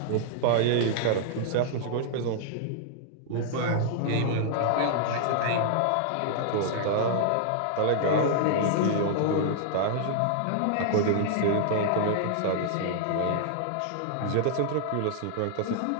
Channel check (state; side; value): different; both; correlation -0.01